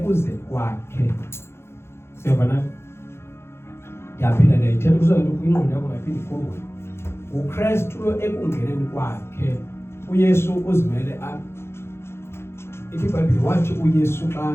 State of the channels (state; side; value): late; right; 0.12 ms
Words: kwakhe. Siyabona? Yaphinda ndayithetha kuzonto kwingqondo yakho ngaphinde ikhumbule. uKristu lo ekungeneni kwakhe. uYesu uzimele apha. Ithi iBhayibheli wathi uYesu